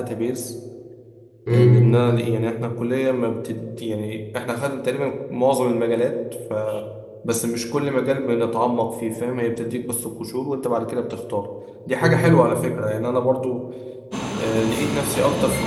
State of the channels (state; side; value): identical; both; correlation 1.00